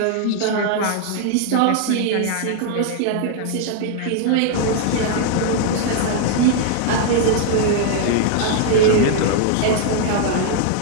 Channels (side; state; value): both; different; correlation 0.00